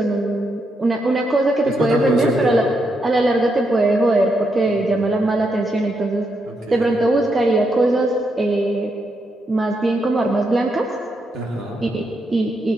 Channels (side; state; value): both; normal; correlation 0.81